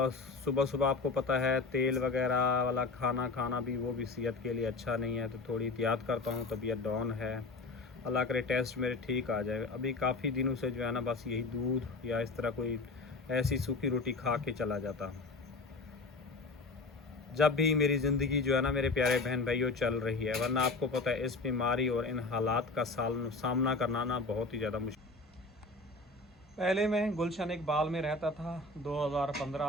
सुबह सुबह आपको पता है तेल वगैरह वाला खाना खाना भी वो भी सेहत के लिए अच्छा नहीं है, तो थोड़ी एहतियात करता हूँ। तबीयत डाउन है, अल्लाह करे टेस्ट मेरे ठीक आ जाए। अभी काफ़ी दिनों से जो है ना बस यही दूध या इस तरह कोई ऐसी सूखी रोटी खा के चला जाता हूँ। जब भी मेरी ज़िंदगी जो है ना मेरे प्यारे बहन भाइयों चल रही है, वरना आपको पता है इस बीमारी और इन हालात का सामना करना ना बहुत ही ज़्यादा मुश्किल। पहले मैं गुलशन इकबाल में रहता था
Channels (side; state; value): right; quieter; 3.5 dB